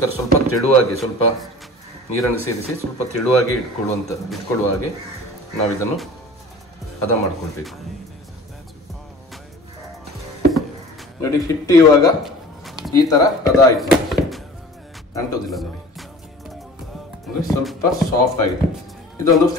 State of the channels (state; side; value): normal; both; correlation 0.42